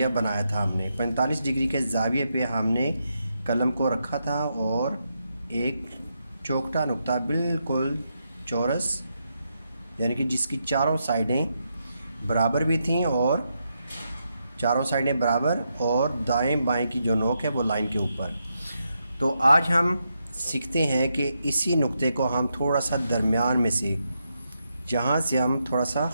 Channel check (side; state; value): both; inverted; correlation -0.83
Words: बनाया था हमने। 45 डिग्री के ज़ाविये पे हमने कलम को रखा था और एक चौखटा नुक्ता बिल्कुल चौरस, यानी कि जिसकी चारों साइडें बराबर भी थीं, और चारों साइडें बराबर, और दाएं बाएं की जो नोक है वो लाइन के ऊपर। तो आज हम सीखते हैं कि इसी नुक्ते को हम थोड़ा सा दरमियान में से, जहाँ से हम थोड़ा सा